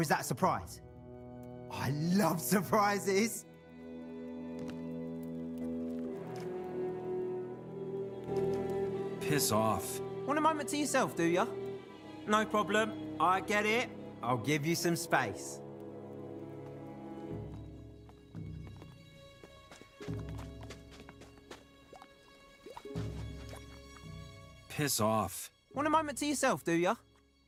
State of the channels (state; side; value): identical; both; correlation 1.00